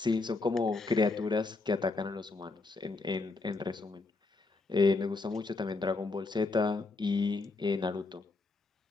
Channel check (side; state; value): right; quieter; 3.6 dB